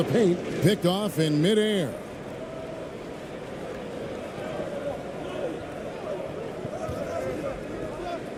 paint, picked off in midair.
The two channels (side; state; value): both; identical; correlation 1.00